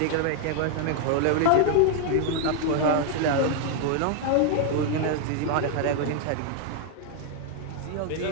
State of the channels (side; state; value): both; different; correlation 0.00